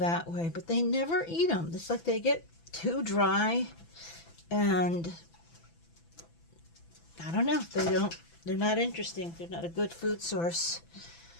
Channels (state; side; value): late; right; 6.0 ms